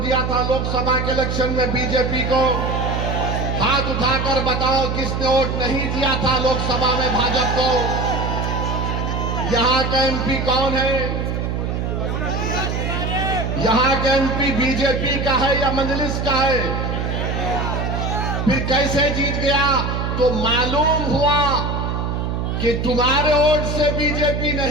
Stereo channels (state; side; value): noise; right; hum, 1 dB below the sound